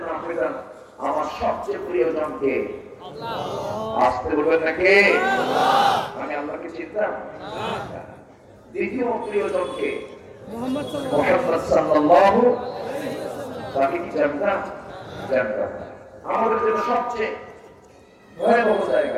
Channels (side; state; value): both; identical; correlation 1.00